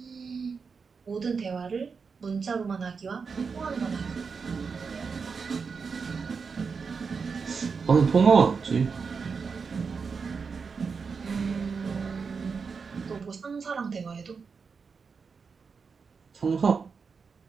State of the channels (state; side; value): quieter; left; 5.3 dB